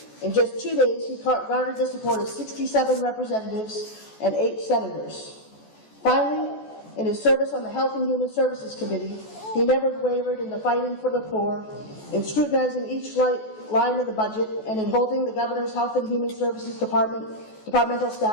In just 2 days, he garnered the support of 67 representatives and 8 senators. Finally, in his service on the Health and Human Services Committee, he never wavered in the fighting for the poor, in scrutinizing each line of the budget, and in holding the Governor's Health and Human Services departmental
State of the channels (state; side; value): late; right; 14 ms